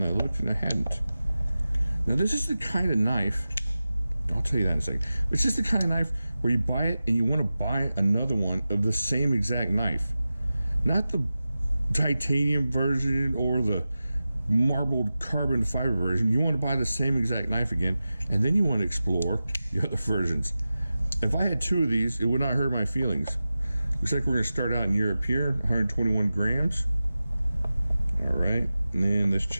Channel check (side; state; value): both; inverted; correlation -0.95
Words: I looked and I hadn't. Now this is the kind of knife, I'll tell you that in a second. It's just the kind of knife where you buy it and you want to buy another one of the same exact knife. Not the titanium version or the marbled carbon fiber version. You want to buy the same exact knife again, and then you want to explore the other versions. If I had two of these, it would not hurt my feelings. Looks like we're going to start out in Europe here, 121 grams. All right, and then let's